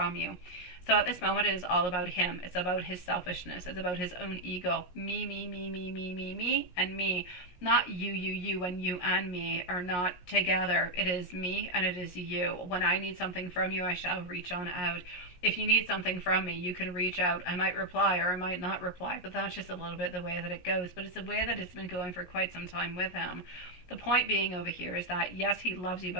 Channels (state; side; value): late; right; 17 ms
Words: you. So at this moment, it is all about him. It's about his selfishness. It's about his own ego. Me, and me. Not you, and you and me are not together. It is me and it is you. When I need something from you, I shall reach on out. If you need something from me, you can reach out. I might reply or I might not reply, but that's just a little bit the way that it goes. But it's a way that it's been going for quite some time with him. The point being over here is that, yes, he loves you,